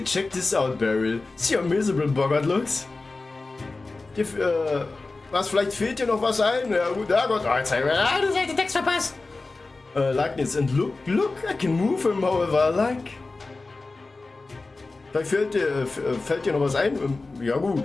check this out, Beryl. See how miserable Bogart looks? Was, vielleicht fehlt dir noch was ein? Ja gut, ja Gott, jetzt habe ich den Text verpasst. Likeness and look, I can move him however I like. Vielleicht fällt dir noch was ein? Ja gut.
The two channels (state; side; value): quieter; right; 3.5 dB